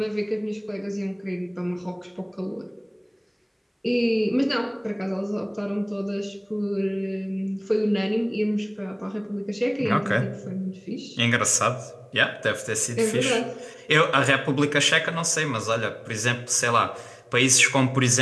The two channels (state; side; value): identical; both; correlation 1.00